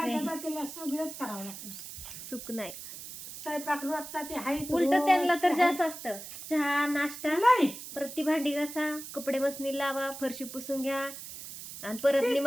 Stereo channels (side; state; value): right; noise; hiss, 11 dB below the sound